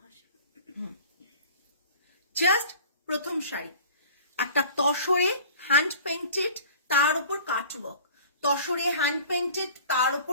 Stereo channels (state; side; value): inverted; both; correlation -0.45